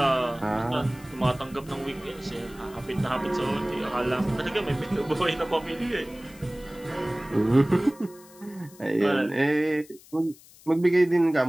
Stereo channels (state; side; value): noise; left; hiss, 23 dB below the sound